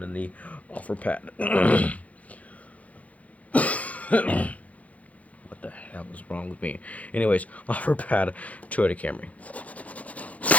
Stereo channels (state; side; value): late; right; 0.068 ms